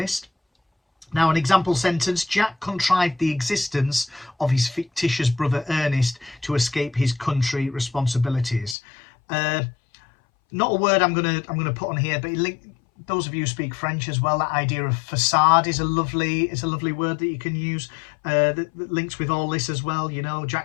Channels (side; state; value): right; drops out; at 8.8 s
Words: Now, an example sentence: Jack contrived the existence of his fictitious brother Ernest to escape his country responsibilities. Not a word I'm gonna put on here, but those of you who speak French as well, that idea of facade is a lovely word that you can use that links with all this as well. You know,